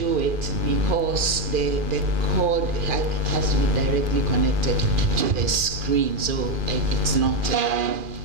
it because the cord has to be directly connected to the screen, so it's not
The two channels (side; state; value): left; late; 2.4 ms